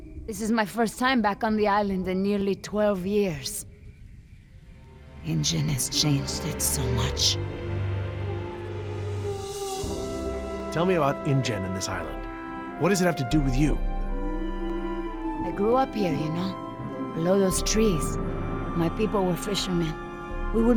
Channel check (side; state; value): both; identical; correlation 1.00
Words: This is my first time back on the island in nearly 12 years. Injun has changed it so much. Tell me about InGen and this island. What does it have to do with you? I grew up here, you know, below those trees. My people were fishermen. We would